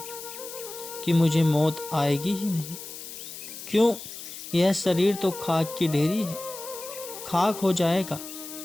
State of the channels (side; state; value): left; noise; hiss, 11 dB below the sound